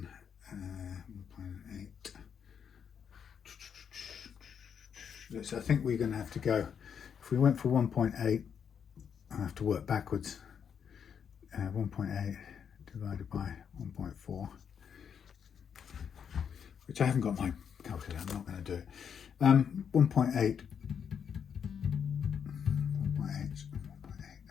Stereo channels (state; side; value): quieter; right; 7.5 dB